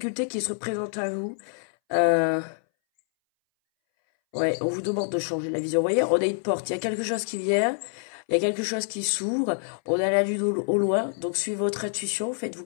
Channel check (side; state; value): right; silent; 61 dB below the other